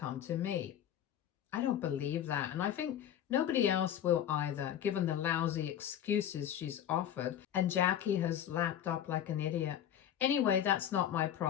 to me. I don't believe that, and I think nobody else will either, given the lousy excuses she's offered, and Jackie has lapped up like an idiot. Anyway, that's not my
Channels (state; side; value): quieter; right; 10.3 dB